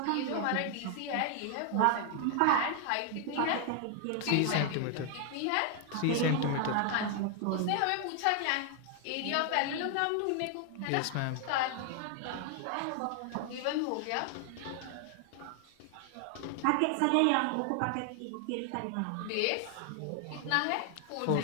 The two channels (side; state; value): both; different; correlation 0.00